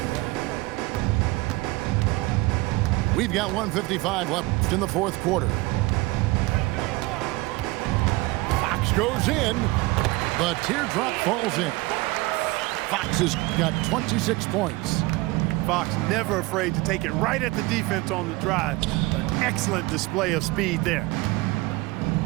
We've got 1:55 left in the 4th quarter. Fox goes in. The teardrop falls in. Fox has got 26 points. Fox never afraid to take it right at the defense on the drive. An excellent display of speed there.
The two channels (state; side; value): quieter; left; 21.7 dB